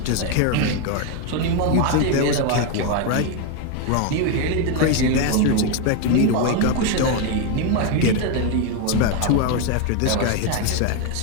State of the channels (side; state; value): both; different; correlation 0.01